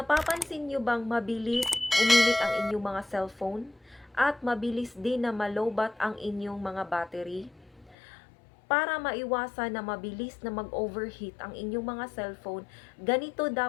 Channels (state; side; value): drops out; right; at 8.0 s